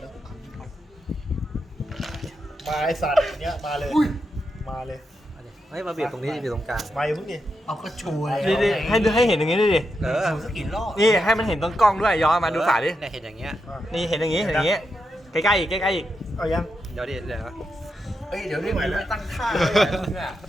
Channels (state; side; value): normal; both; correlation 0.85